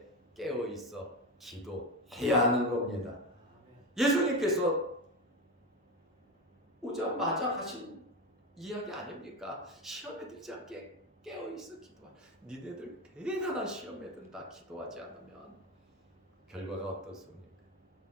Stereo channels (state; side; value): normal; both; correlation 0.18